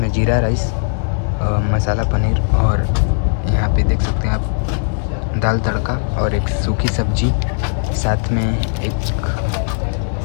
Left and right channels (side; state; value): right; silent; 63 dB below the other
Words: जीरा राइस, मसाला पनीर और यहाँ पे देख सकते हैं आप दाल तड़का और एक सूखी सब्जी, साथ में एक